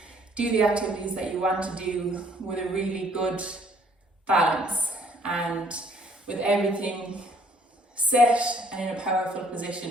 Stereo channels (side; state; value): both; normal; correlation 0.62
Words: do the activities that you want to do with a really good balance and with everything set and in a powerful